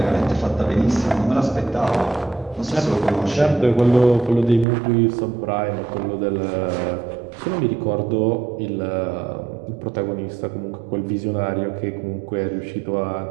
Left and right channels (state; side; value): drops out; left; at 4.7 s